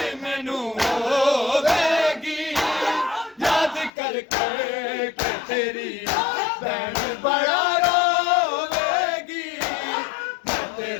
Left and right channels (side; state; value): right; drops out; at 3.9 s